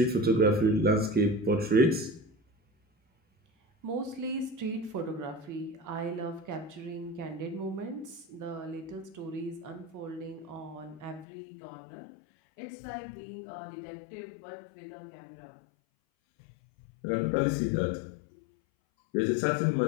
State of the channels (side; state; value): right; drops out; at 11.2 s